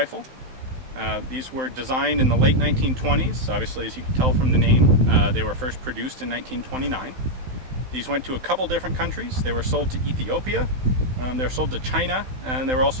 These were designed in the late 1920s. Obviously, as you can tell from the name, they were first produced in 1929. These went to a couple different countries. They were sold to Ethiopia, they were sold to China, and they were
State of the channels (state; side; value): late; left; 16 ms